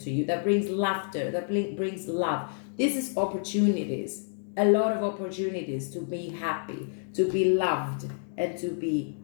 to you, that brings laughter, that brings love. This is opportunities, a lot of opportunities to be happy, to be loved, and to be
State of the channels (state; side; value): silent; right; digital silence